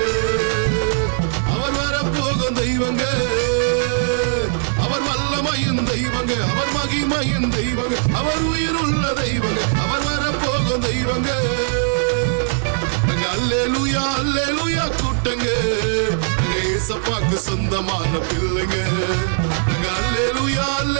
அவர் வரப்போகும் தெய்வங்க. அவர் வல்லமையின் தெய்வங்க, அவர் மகிமையின் தெய்வங்க, அவர் உயிருள்ள தெய்வங்க, அவர் வரப்போகும் தெய்வங்க. அல்லேலூயா அல்லேலூயா கூட்டங்க, ஏசப்பாக்கு சொந்தமான பிள்ளைங்க. அல்லேலூயா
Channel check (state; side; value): silent; left; 66 dB below the other